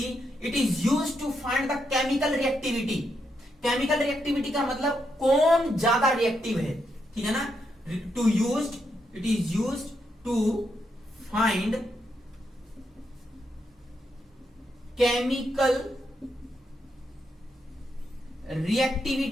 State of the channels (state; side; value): normal; both; correlation 0.81